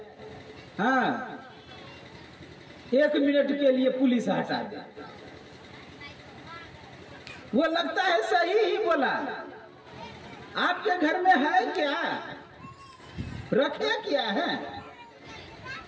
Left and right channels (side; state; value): both; identical; correlation 1.00